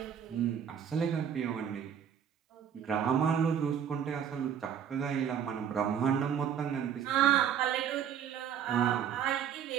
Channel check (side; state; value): left; quieter; 8.5 dB